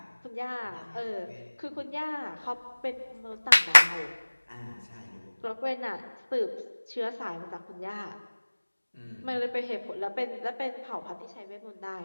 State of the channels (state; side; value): inverted; both; correlation -1.00